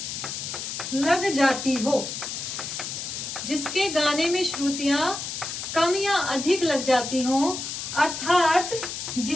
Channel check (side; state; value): left; noise; hiss, 6 dB below the sound